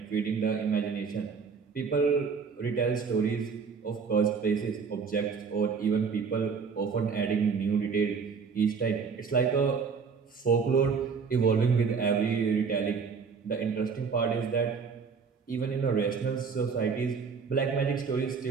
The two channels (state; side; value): quieter; left; 5.6 dB